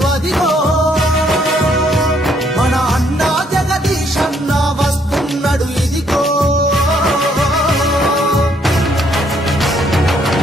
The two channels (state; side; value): normal; both; correlation 0.69